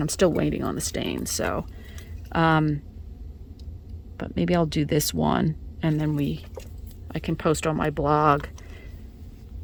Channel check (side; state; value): both; identical; correlation 1.00